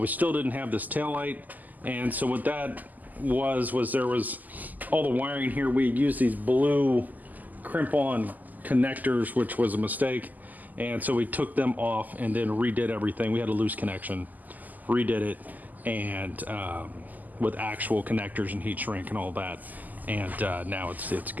still didn't have this tail light, and so what that was there was all the wiring here. We had used these blue crimp-on connectors, which was a mistake, and so we took them off and then redid everything. We had a loose connection, redid it, and with actual connectors and heat shrink and all that, and now it's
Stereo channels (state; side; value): late; left; 0.082 ms